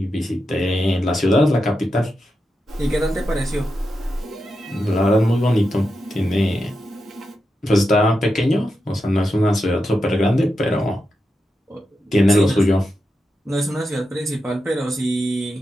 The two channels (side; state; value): both; normal; correlation 0.88